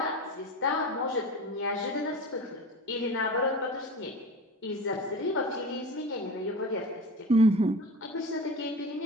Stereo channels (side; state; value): both; normal; correlation 0.31